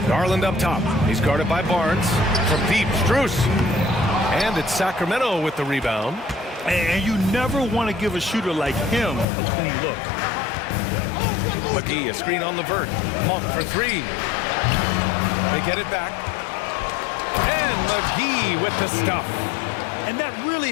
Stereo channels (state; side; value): drops out; right; at 9.2 s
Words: Garland up top. He's guarded by Barnes. From deep, Strus. And it's Sacramento with the rebound. And you never want to give a shooter like him a clean look. McGee, a screen on LeVert. Monk for three. They get it back. And McGee with the stuff. And that really